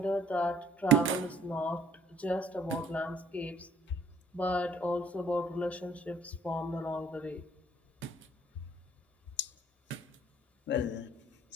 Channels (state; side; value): normal; both; correlation 0.59